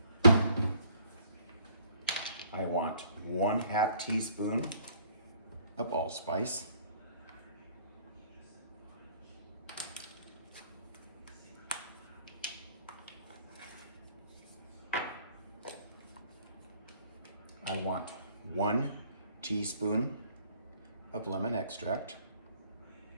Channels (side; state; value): both; inverted; correlation -0.59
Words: I want 1/2 teaspoon of allspice. I want 1 teaspoon of lemon extract.